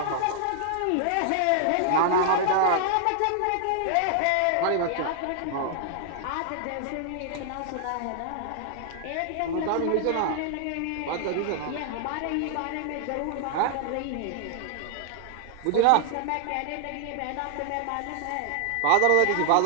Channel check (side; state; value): both; different; correlation 0.00